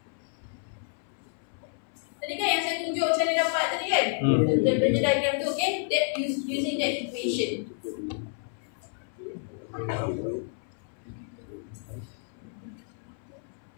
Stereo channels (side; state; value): right; silent; 58 dB below the other